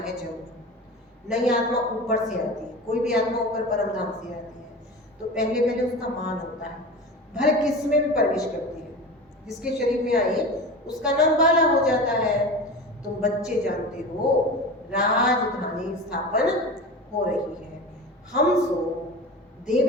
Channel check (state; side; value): normal; both; correlation 0.31